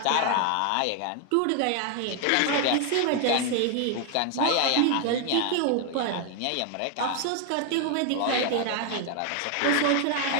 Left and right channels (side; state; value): both; different; correlation 0.00